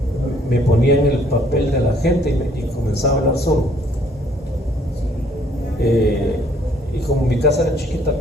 me ponía en el papel de la gente y comenzaba a hablar solo. Y como mi casa era chiquita,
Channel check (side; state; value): both; normal; correlation 0.63